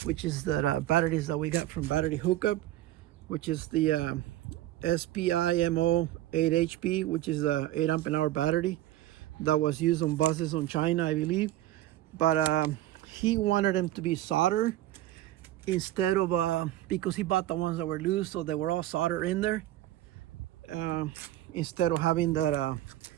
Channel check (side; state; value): left; quieter; 14.5 dB